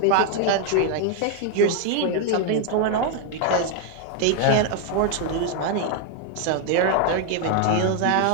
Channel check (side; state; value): both; different; correlation 0.00